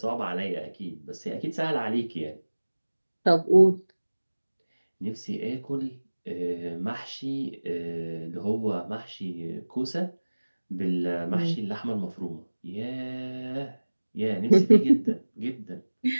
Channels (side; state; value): both; inverted; correlation -1.00